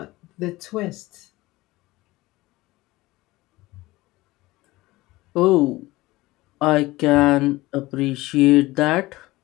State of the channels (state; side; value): quieter; right; 19.4 dB